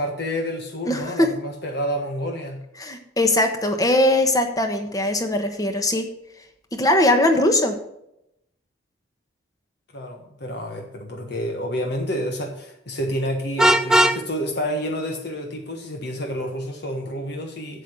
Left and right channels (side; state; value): both; normal; correlation 0.45